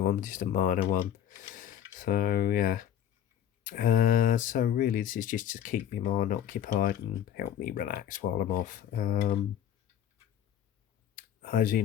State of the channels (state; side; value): quieter; right; 10.3 dB